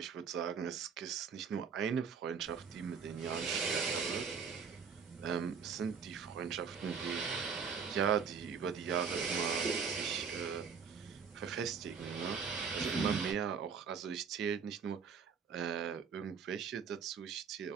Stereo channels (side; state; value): left; quieter; 6.3 dB